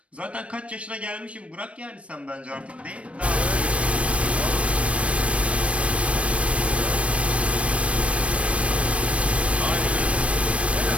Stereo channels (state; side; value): late; left; 0.062 ms